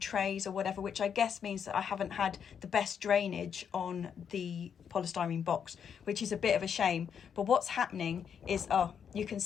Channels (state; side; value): quieter; right; 7.6 dB